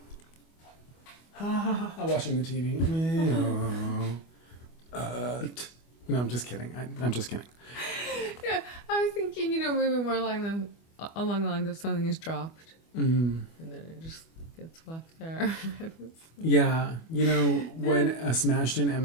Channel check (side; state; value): right; late; 25 ms